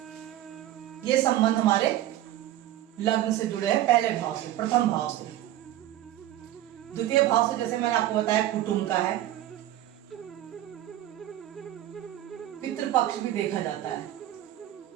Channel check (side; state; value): left; quieter; 13.5 dB